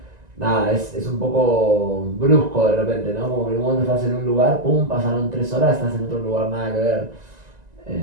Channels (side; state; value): left; late; 1.9 ms